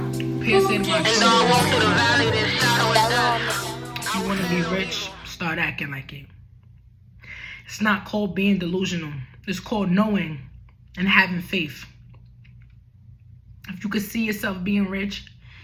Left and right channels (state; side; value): identical; both; correlation 1.00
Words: And though I walk through the valley, there's shadow of death. You want to be rich? Start acting like it. It's not called being delusional. It's called knowing and having faith. If you could see yourself being rich,